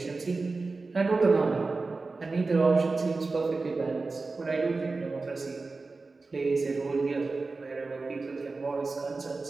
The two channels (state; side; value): quieter; left; 3.8 dB